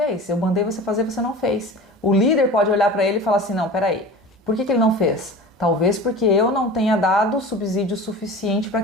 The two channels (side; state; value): both; normal; correlation 0.36